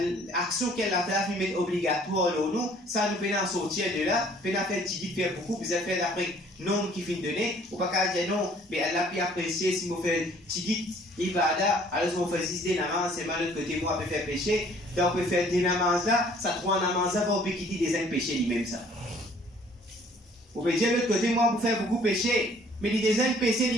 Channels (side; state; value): both; normal; correlation 0.57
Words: qu'elle a fait obligatoire nous, ça nous permet de sortir de là, permet de faire petit faire beaucoup, vous avez fait d'après nom qui finit de donner, ou pas qu'à dire non, mais elle a pu apprécier si vous faites petit ibada, alors on fait 6 des namans, c'est mal de côté, moi, on peut faire péché, donc on peut faire des namans là, ça trouve un namans là, on peut quitter des péchés lui-même ça. Vous pouvez dire de l'autre côté, moi, vous faire beaucoup péché, mais les des péchés